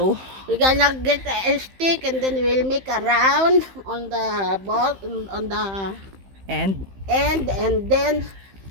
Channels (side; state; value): left; late; 15 ms